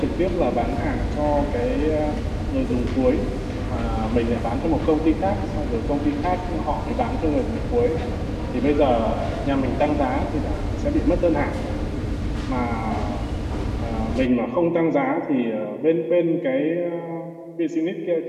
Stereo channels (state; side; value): identical; both; correlation 1.00